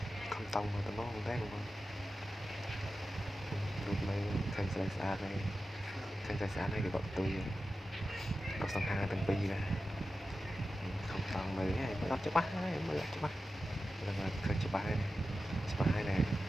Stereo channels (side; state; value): both; normal; correlation 0.92